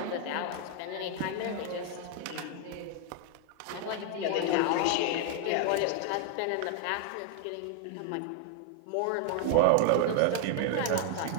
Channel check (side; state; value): both; different; correlation 0.00